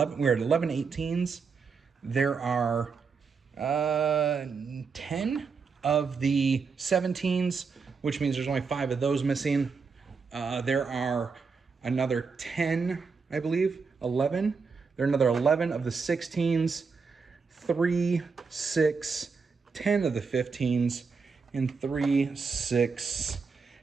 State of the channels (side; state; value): left; quieter; 5.1 dB